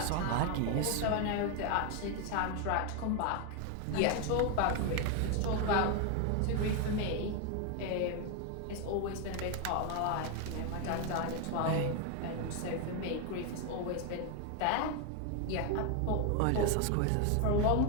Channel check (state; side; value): different; both; correlation 0.01